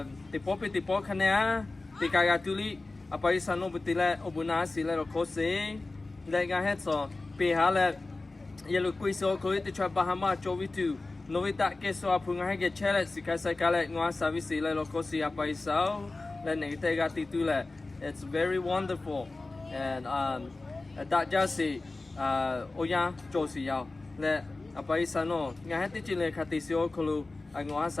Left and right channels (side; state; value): right; quieter; 3.3 dB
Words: popi ti po khane ti kaga tuli apai sanu butile obuna sile ro khose le ga het so pe ha le yelu kui so ko ti cha bahama chovitu novita ke so apunga ha ge chele sikasa kale ngwa service le ro khose apai sao le ne te ga ti tu le. It's very wonderful and that just oya josi yao le apai sano nga ha ti chile khati so khulu.